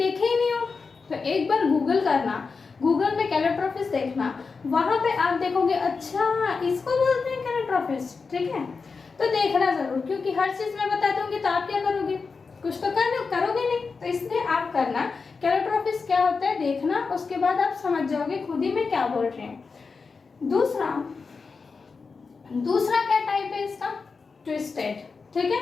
ही नहीं हो, तो एक बार गूगल करना, गूगल में कैलोट्रोपिस देखना, वहां पे आप देखोगे अच्छा इसको बोलते हैं कैलोट्रोपिस। ठीक है, तो देखना जरूर, क्योंकि हर चीज मैं बता दूंगी तो आप क्या करोगे, कुछ तो करोगे नहीं, तो इसलिए आप करना कैलोट्रोपिस क्या होता है देखना, उसके बाद आप समझ जाओगे खुद ही में क्या बोल रहे हैं। दूसरा क्या टाइप है इसका, ट्विस्टेड। ठीक है,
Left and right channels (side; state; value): right; quieter; 4.7 dB